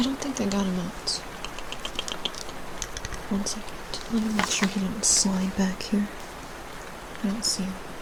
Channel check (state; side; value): identical; both; correlation 1.00